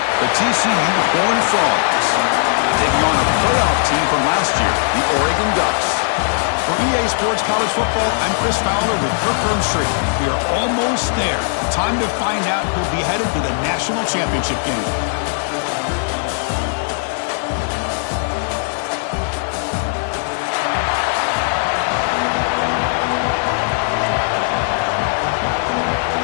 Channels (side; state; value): right; silent; 65 dB below the other